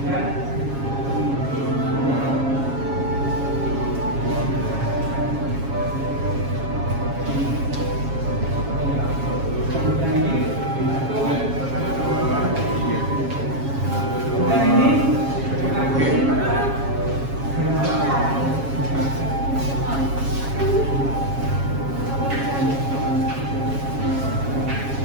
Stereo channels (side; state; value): left; late; 7.3 ms